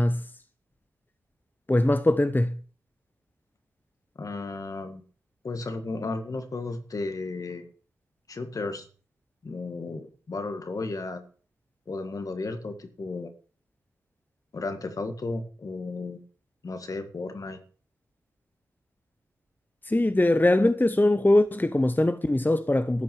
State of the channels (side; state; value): both; normal; correlation 0.95